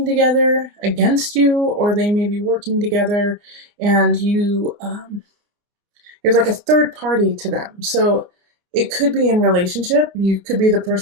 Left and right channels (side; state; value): left; late; 29 ms